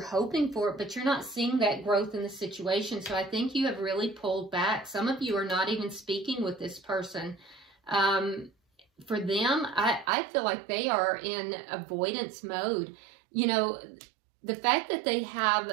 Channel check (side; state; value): left; drops out; at 10.1 s